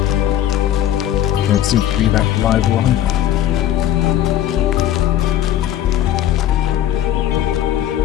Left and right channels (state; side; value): quieter; right; 11.6 dB